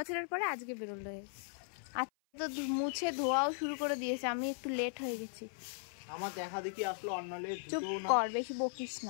পরে আজকে বেরোলো। আজকে তো মুছে ধোয়াও শুরু করে দিয়েছে, আমি একটু লেট হয়ে গেছি। আমার দেখা দেখি আসলো অন্যলে। চুপ কর, বেশি বকিস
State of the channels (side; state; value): right; silent; 53 dB below the other